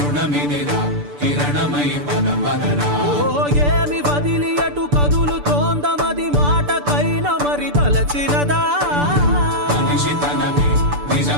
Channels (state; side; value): late; left; 6.8 ms